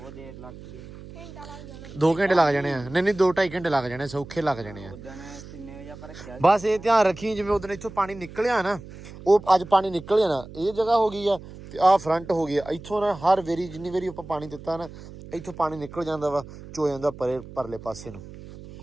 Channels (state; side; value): noise; right; hum, 16 dB below the sound